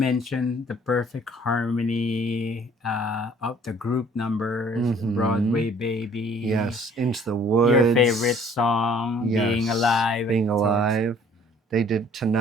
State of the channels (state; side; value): normal; both; correlation 0.56